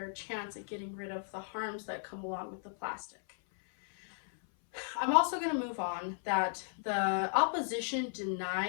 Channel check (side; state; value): right; silent; 54 dB below the other